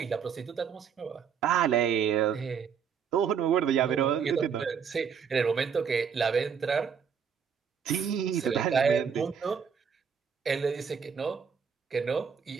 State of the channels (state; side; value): quieter; left; 7.0 dB